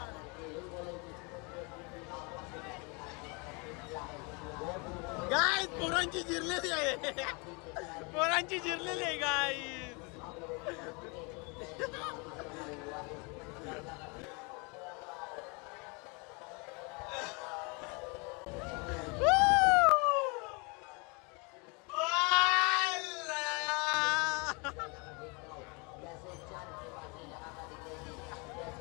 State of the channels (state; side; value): quieter; right; 31.0 dB